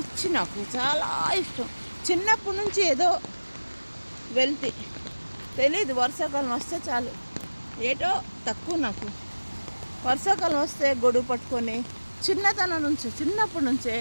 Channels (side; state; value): both; inverted; correlation -1.00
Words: నాకు చాలా ఇష్టం. చిన్నప్పటి నుంచి ఏదో వెళ్తే తెలీదు, వర్షాకాలం వస్తే చాలు ఏటో తక్కువ నాకు. వర్షాకాలం వస్తే గొడుగు పట్టుకొని చిన్నప్పటి నుంచే